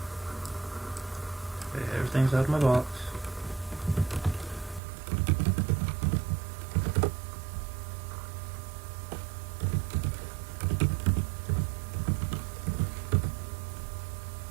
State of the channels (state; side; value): drops out; left; at 4.8 s